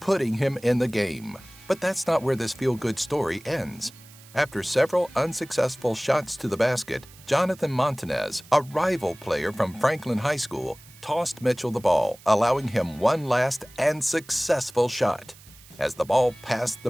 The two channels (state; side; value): noise; right; hiss, 23 dB below the sound